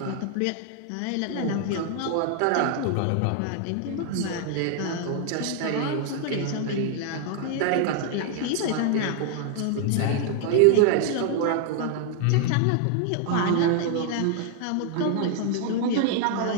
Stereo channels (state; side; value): different; both; correlation 0.00